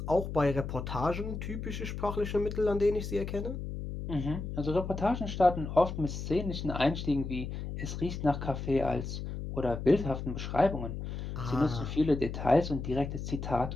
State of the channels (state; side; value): noise; left; hum, 6 dB below the sound